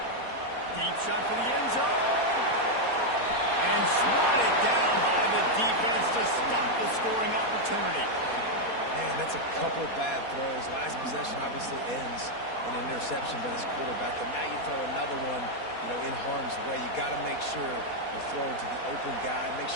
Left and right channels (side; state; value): right; late; 4.2 ms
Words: Deep shot for the end zone. And swatted down by the defense to stop the scoring opportunity. Man, that's a couple bad throws. Last possession obviously ends in an interception by this quarterback, and now you throw another one, in harm's way. You got to make sure you're throwing to the open guy. Make